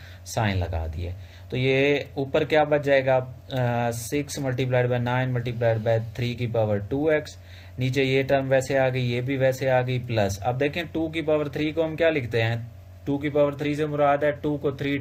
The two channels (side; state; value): both; identical; correlation 1.00